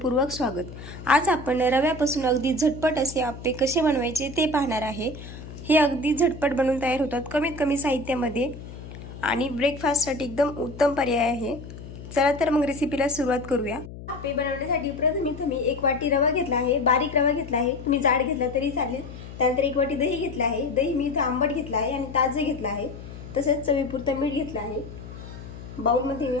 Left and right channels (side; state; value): left; noise; hum, 13 dB below the sound